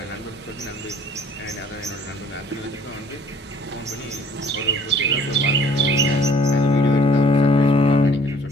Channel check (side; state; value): both; normal; correlation 0.55